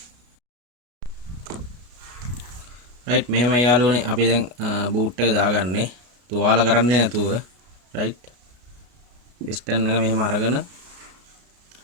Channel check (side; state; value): left; late; 33 ms